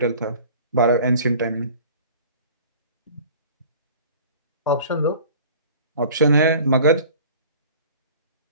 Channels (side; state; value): both; inverted; correlation -0.45